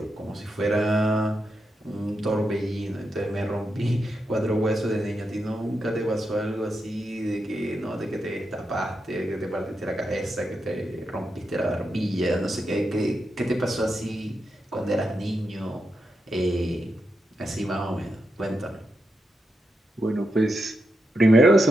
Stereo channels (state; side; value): normal; both; correlation 0.86